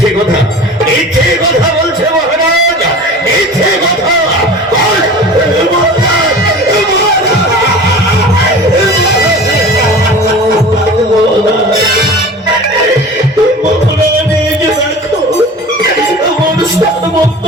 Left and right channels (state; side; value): normal; both; correlation 0.38